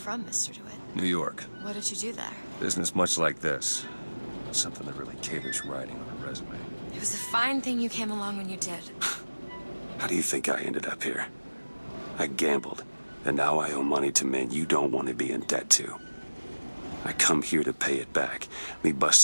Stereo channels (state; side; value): inverted; both; correlation -1.00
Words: Mr. DeWitt? New York. What did you do there? Business much like this. Something that really caters writing on a resume. It was a fine thing you came along when you did. How do you think I ended up here? I gambled, and now I owe money to men you don't want to be in debt to. I come here to pay it back. Me